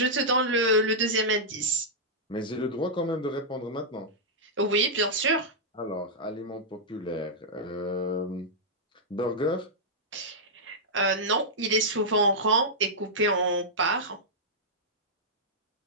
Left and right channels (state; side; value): normal; both; correlation -0.10